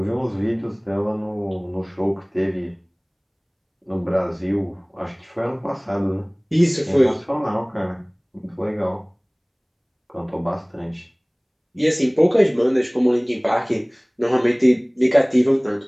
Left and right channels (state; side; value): identical; both; correlation 1.00